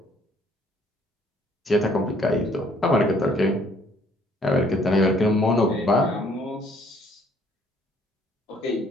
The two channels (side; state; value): both; normal; correlation 0.62